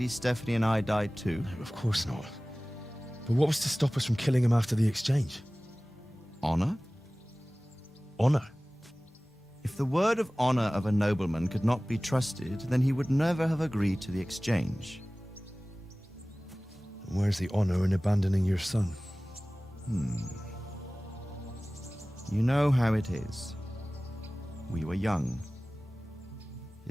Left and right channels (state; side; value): normal; both; correlation 0.98